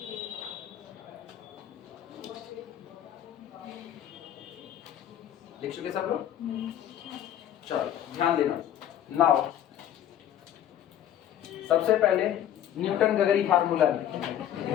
लिख चुके सब लोग? चलो ध्यान देना। नाउ सबसे पहले न्यूटन गगरी फार्मूला लिखें।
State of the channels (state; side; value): quieter; right; 10.9 dB